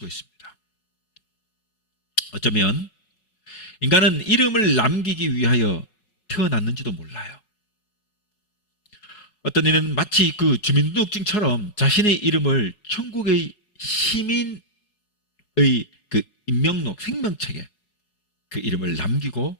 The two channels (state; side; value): late; right; 4.7 ms